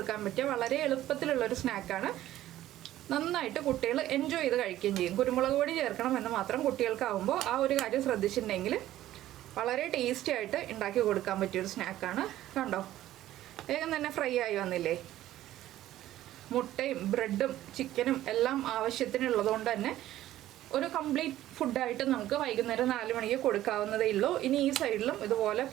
പറ്റിയ വളരെ എളുപ്പത്തിലുള്ളൊരു സ്നാക്കാണ്. നന്നായിട്ട് കുട്ടികൾ എൻജോയ് ചെയ്ത് കഴിക്കുകയും ചെയ്യും. കുരുമുളക് പൊടി ചേർക്കണം എന്ന് മാത്രം കുട്ടികൾക്കാവുമ്പോൾ ആ ഒരു കാര്യം ശ്രദ്ധിച്ചിട്ടുണ്ടെങ്കിൽ വളരെ ടേസ്റ്റി ആയിട്ട് ഉണ്ടാക്കി കൊടുക്കാൻ പറ്റിയൊരു സ്നാക്കാണ്. കണ്ടോ, വേഗം തന്നെ ഫ്രൈ ആയി വന്നില്ലേ. മുട്ടയും ബ്രെഡും ചിക്കനും എല്ലാം ആവശ്യത്തിനുള്ളതുകൊണ്ട് തന്നെ ഒരു കംപ്ലീറ്റ് ഫുഡായിട്ട് നമുക്ക് വൈകുന്നേരം 4 മണിക്ക് കൊടുക്കാവുന്നതേ ഉള്ളൂ. ഇനി ഈ സൈഡിലും ഇതുപോലെ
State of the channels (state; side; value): quieter; left; 13.9 dB